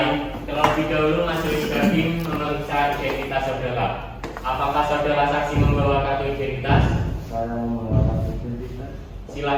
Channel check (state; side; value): identical; both; correlation 1.00